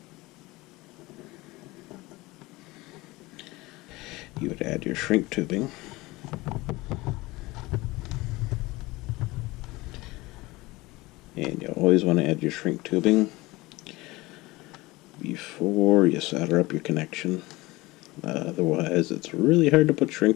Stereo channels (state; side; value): quieter; right; 21.1 dB